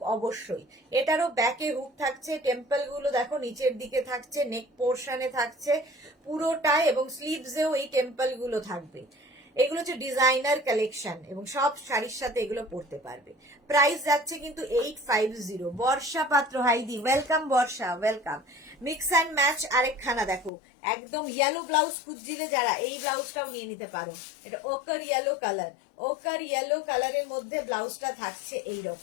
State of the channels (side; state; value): right; drops out; at 20.5 s